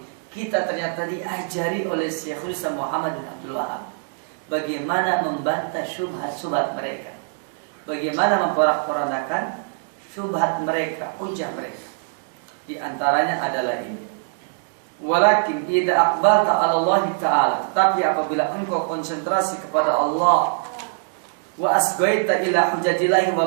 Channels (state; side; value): silent; left; digital silence